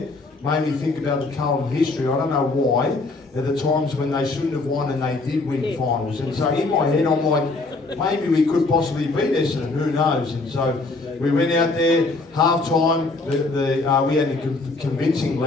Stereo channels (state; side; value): quieter; right; 3.4 dB